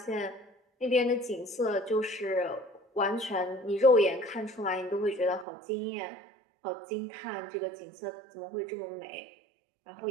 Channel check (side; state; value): left; drops out; at 5.5 s